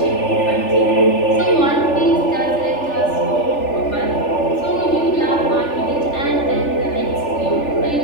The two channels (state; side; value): late; right; 3.4 ms